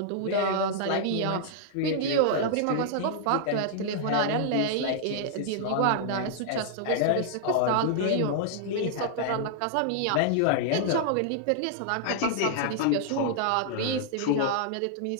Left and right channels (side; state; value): both; different; correlation -0.01